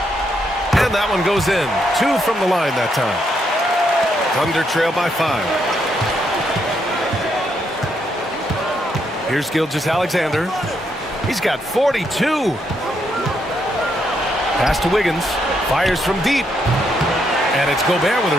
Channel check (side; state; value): both; normal; correlation 0.77